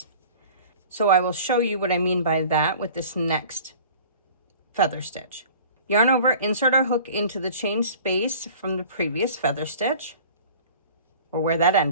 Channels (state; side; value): inverted; both; correlation -0.45